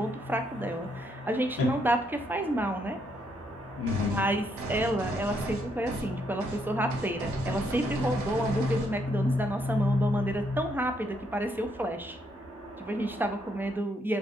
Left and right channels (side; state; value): both; normal; correlation 0.74